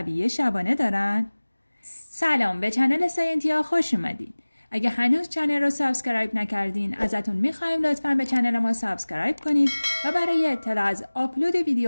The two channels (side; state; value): both; inverted; correlation -1.00